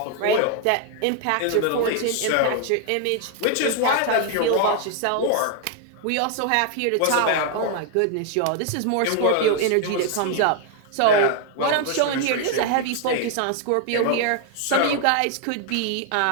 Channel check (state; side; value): different; both; correlation 0.00